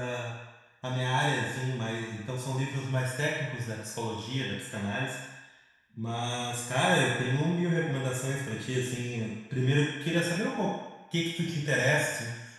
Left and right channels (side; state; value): both; identical; correlation 1.00